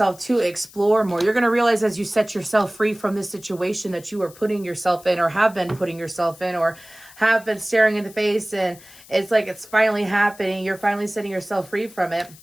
to explore more. You're going to realize as you set yourself free from this situation that you are putting yourself in or have been putting yourself in or have been staring in the face, and it's like it's finally happening. You're finally setting yourself free from it.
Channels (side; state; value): left; noise; hiss, 22 dB below the sound